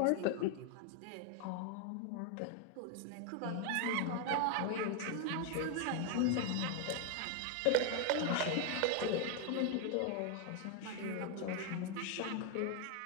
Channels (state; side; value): different; both; correlation 0.01